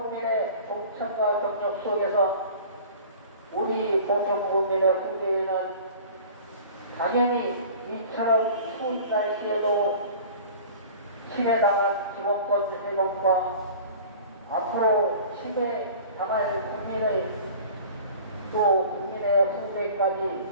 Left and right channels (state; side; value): inverted; both; correlation -0.42